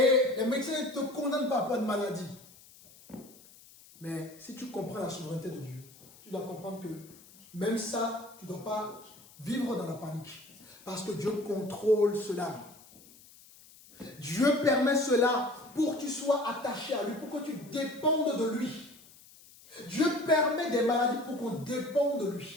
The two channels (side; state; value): left; noise; hiss, 23 dB below the sound